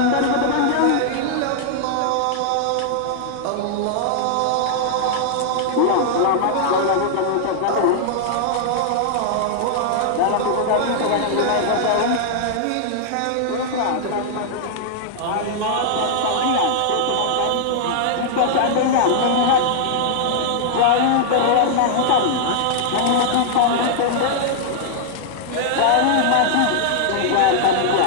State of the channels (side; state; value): both; different; correlation -0.01